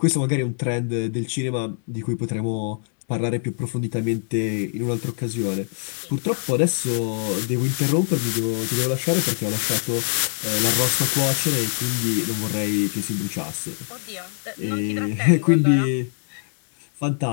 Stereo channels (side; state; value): right; silent; digital silence